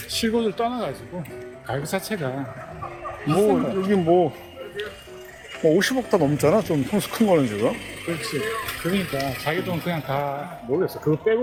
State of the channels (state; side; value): identical; both; correlation 1.00